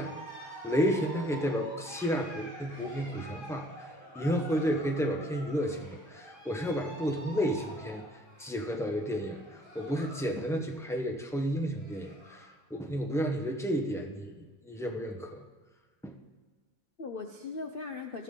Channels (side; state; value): both; normal; correlation 0.59